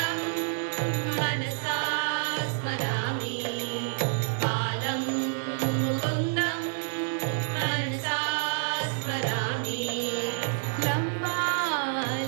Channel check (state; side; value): silent; left; 56 dB below the other